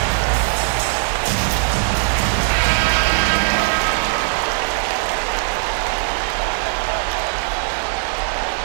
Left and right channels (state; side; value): silent; left; 66 dB below the other